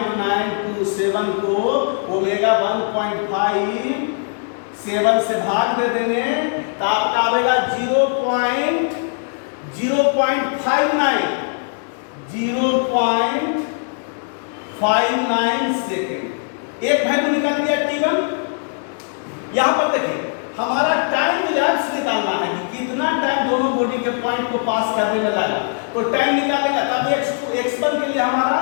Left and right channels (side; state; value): right; silent; 59 dB below the other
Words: को ओमेगा 1.57 से भाग दे देंगे तो आपका आएगा 0.59 सेकेंड। एक वैल्यू निकाल दिया T1। यहां पर देखिए हमारा टाइम इलैप्स निकालना है कि कितना टाइम दोनों बॉडी के पॉइंट को पास करने में लगा, तो टाइम निकालेगा तब x1 के लिए हमारा